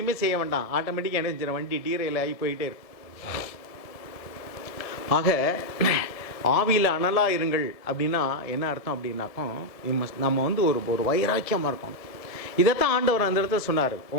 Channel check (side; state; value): right; late; 1.7 ms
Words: செய்ய வேண்டாம், ஆட்டோமேட்டிக்காக என்ன செஞ்சிடும், வண்டி டீரையில் ஆகி போயிட்டே இருக்கும். ஆக ஆவியில் அனலாக இருங்கள் அப்படின்னா என்ன அர்த்தம் அப்படின்னாக்கும், நம்ம வந்து ஒரு வைராக்கியமாக இருக்கணும். இதைத்தான் ஆண்டவர் அந்த இடத்துல சொன்னார்.